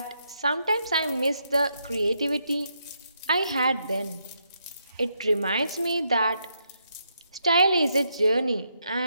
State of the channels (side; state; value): both; inverted; correlation -0.79